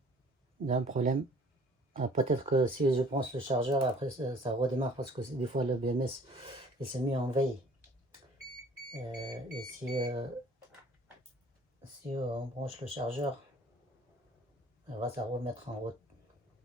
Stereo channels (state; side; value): normal; both; correlation 0.53